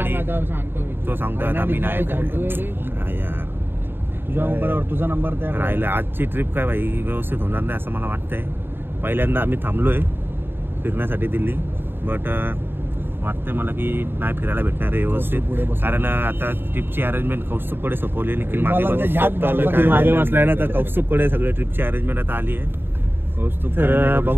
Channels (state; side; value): late; left; 0.10 ms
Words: काय आता सांगतो मी. तो सांगतोय आता मी नाही सांगतोय रे. हा यार तुझ्या मोबाईलवर तुझा नंबर त्या राहिलं. आजची ट्रिप काय भाई व्यवस्थित होणार नाही असं मला वाटतंय. पहिल्यांदा आम्ही थांबलोय फिरण्यासाठी दिल्ली, बट वाटतंय मला की नाही फिरायला भेटणार आहे व्यवस्थित. कारण आता ट्रिपची अरेंजमेंट कौस्तुभकडे सोपवली. निखिल मागे बसलाय ना, तर कौस्तुभकडे सगळे ट्रिपची अरेंजमेंट आता आली आहे. तर